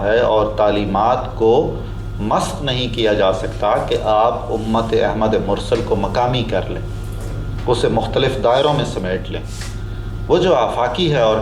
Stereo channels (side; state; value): both; identical; correlation 1.00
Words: ہے اور تعلیمات کو مسخ نہیں کیا جا سکتا کہ آپ امت احمد مرسل کو مقامی کر لیں، اسے مختلف دائروں میں سمیٹ لیں۔ وہ جو آفاقی ہے